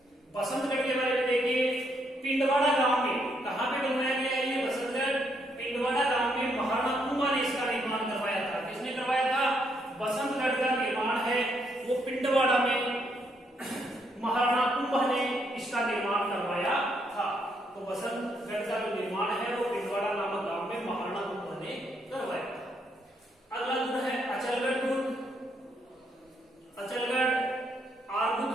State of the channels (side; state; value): both; normal; correlation 0.75